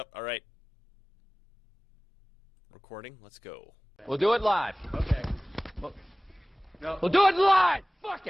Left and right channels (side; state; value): both; normal; correlation 0.98